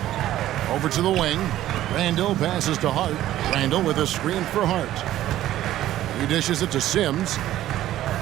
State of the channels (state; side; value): quieter; left; 13.6 dB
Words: Over to the wing. Randall passes to Hart. Randall with a screen for Hart. He dishes it to Sims.